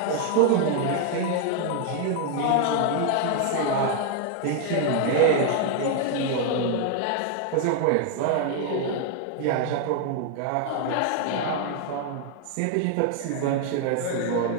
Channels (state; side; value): different; both; correlation 0.00